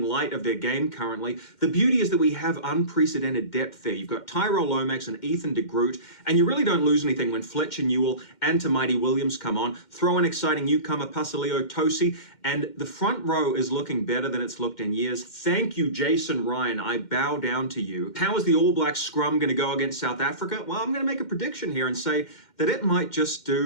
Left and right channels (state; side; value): late; right; 2.1 ms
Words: light of their game currently. The beauty is that we have unprecedented depth there. You've got Tyrell Lomax and Ethan de Groot, and you really don't lose anything when Fletcher Newell and Tamaiti Williams come on. Throw an exciting newcomer, Pasaleo Tosi, and the front row is looking better than it's looked in years. Thank you, Jason Ryan. I bow down to you. How is the All Blacks scrum going to go against South Africa? Well, I'm going to make a prediction here and say that it might just